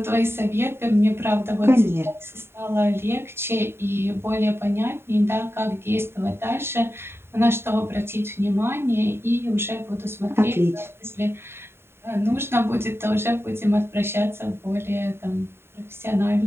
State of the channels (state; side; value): late; left; 0.11 ms